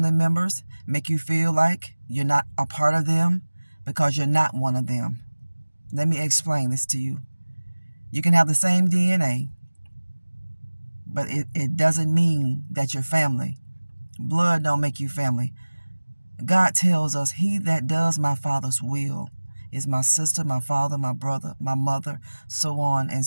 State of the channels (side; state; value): both; inverted; correlation -1.00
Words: members make you feel like you're not a part of them, because you're not one of them. Let me explain this to you. You can have the same DNA, but it doesn't mean that you're family. Blood don't make you family. God tells us, he that does my Father's will is my sister, my father, my brother, my mother, so on and